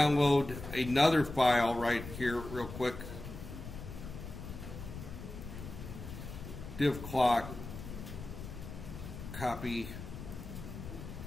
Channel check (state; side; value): noise; left; rumble, 10 dB below the sound